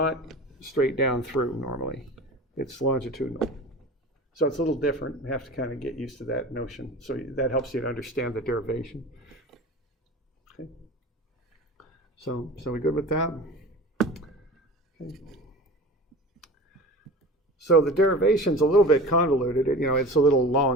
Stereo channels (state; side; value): normal; both; correlation 0.35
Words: straight down through normally. It's longitudinal. So it's a little different. You have to kind of get used to that notion. So that helps you to understand the derivation. Okay. So we good with that? Okay. So the derivation's a little bit convoluted. It's a little